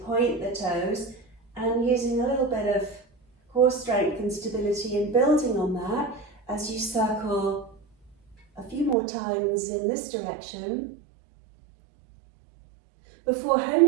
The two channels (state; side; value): drops out; left; at 9.0 s